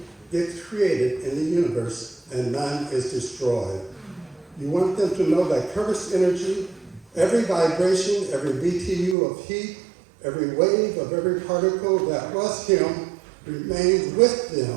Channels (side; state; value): left; drops out; at 9.2 s